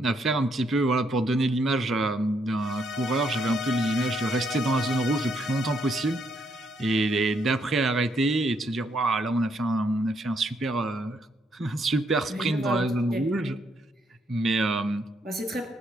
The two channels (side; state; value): both; normal; correlation 0.73